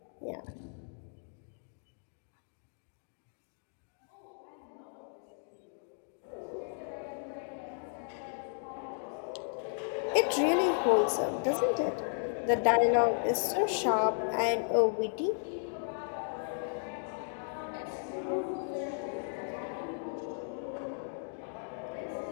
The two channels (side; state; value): right; silent; digital silence